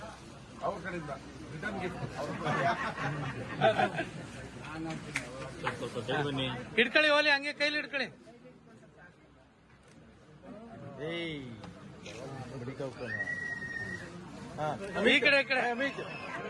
ಅವ್ರ ಕಡೆಯಿಂದ ರಿಟರ್ನ್ ಗಿಫ್ಟ್ ಹಿಡ್ಕೊಳ್ಳಿ ಹೋಲಿ, ಹಂಗೆ ಕೈಲಿ ಹಿಡ್ಕೊಳ್ಳಿ. ಈ ಕಡೆ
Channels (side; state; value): both; identical; correlation 1.00